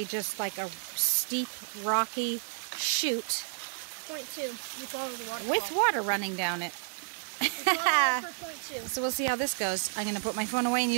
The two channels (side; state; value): left; silent; digital silence